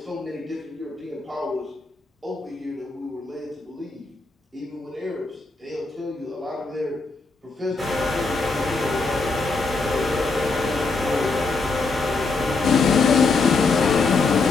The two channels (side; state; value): right; quieter; 3.9 dB